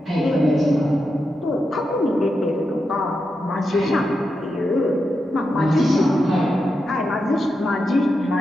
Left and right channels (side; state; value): both; normal; correlation 0.87